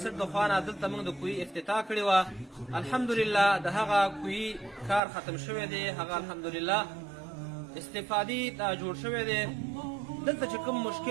د خوا نه دلته موږ د کوهي افتتاح کړې وه. الحمدلله د هغه کوهي کار ختم شوی دی، هغه الحمدلله استفادې ته جوړ شوی دی. دلته چې کوم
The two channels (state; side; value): drops out; left; at 5.0 s